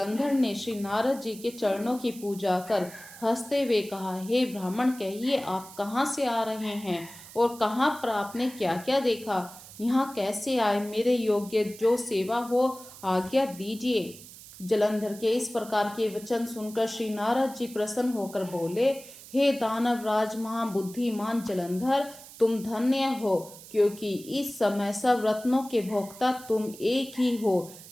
ने श्री नारद जी के चरणों की पूजा कर हंसते हुए कहा, हे ब्राह्मण, कहिए आप कहाँ से आ रहे हैं और कहाँ पर आपने क्या क्या देखा, यहाँ कैसे आए, मेरे योग्य जो सेवा हो आज्ञा दीजिए। जलंधर के इस प्रकार के वचन सुनकर श्री नारद जी प्रसन्न होकर बोले, हे दानव राज महाबुद्धिमान जलंधर, तुम धन्य हो, क्योंकि इस समय सब रत्नों के भोक्ता तुम एक ही हो।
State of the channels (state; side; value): noise; right; hiss, 17 dB below the sound